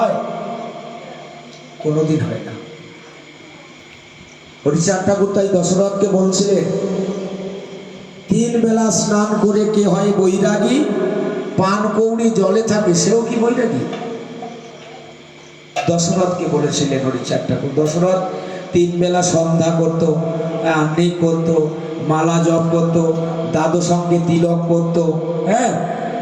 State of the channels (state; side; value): identical; both; correlation 1.00